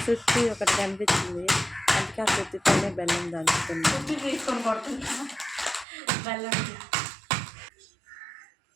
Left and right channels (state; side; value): drops out; left; at 5.9 s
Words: సుత్తి ఒకటి కనిపించింది, అందుకే ఆ సుత్తితోనే బెల్లం దంచుతున్నాను. సుత్తి తీసుకొని కొడుతున్నా బెల్లం.